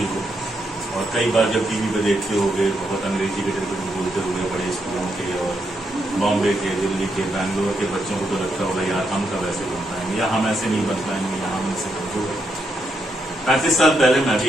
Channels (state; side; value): normal; both; correlation 0.80